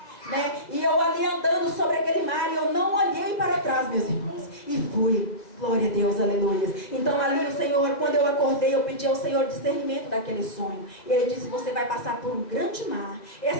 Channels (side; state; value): right; late; 1.9 ms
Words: né? E eu ali andando sobre aquele mar, e eu não olhei para trás, meus irmãos. E fui. Glória a Deus, aleluia. Então ali o Senhor, quando eu acordei, eu pedi ao Senhor discernimento daquele sonho. E Ele disse: você vai passar por um grande mar.